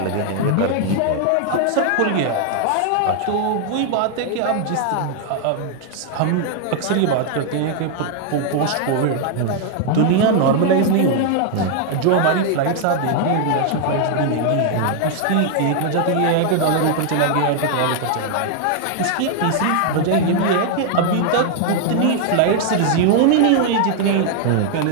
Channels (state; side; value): different; both; correlation 0.00